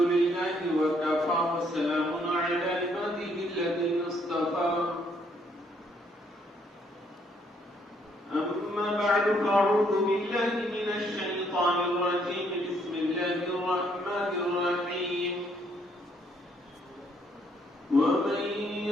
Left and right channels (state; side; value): normal; both; correlation 0.69